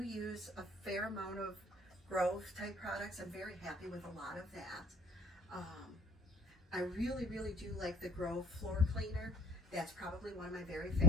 use a fair amount of growth type products. I'm very happy with a lot of that. Um, I really, really do like the Grove floor cleaner. That's probably one of my very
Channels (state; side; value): normal; both; correlation 0.55